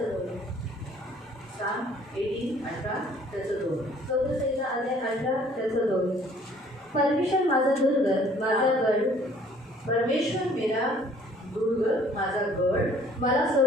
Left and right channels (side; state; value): both; normal; correlation 0.57